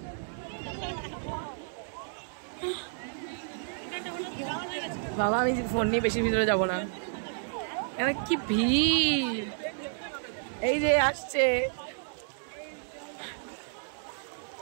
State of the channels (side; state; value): left; silent; digital silence